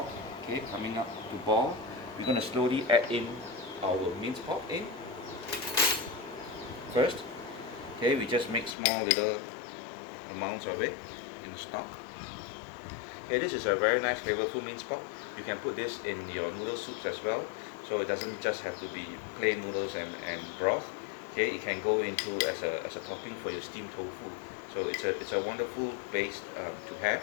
okay, coming up to boil. We're going to slowly add in our minced pork in first. Okay, we just make small little amounts of it in the stock. Okay, this is a very nice flavorful minced pork. You can put this in your noodle soups as well, so it doesn't just have to be plain noodles and broth. Okay, it can go into as a topping for your steamed tofu. So it's a wonderful base to have.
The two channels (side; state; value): right; drops out; at 8.8 s